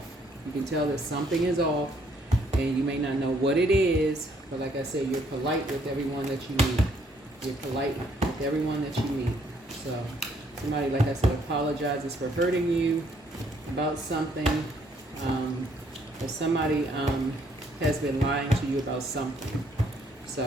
You can tell that something is off, and you may not know what it is, but like I said, you're polite with everyone that you meet. You're polite with everyone that you meet. So somebody, like I said, apologizes for hurting you about something. Or somebody has been lying to you about something. So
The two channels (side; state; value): both; normal; correlation 0.67